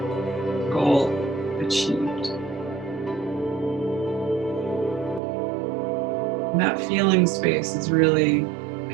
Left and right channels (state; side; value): drops out; left; at 5.2 s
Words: goal achieved. And that feeling space is really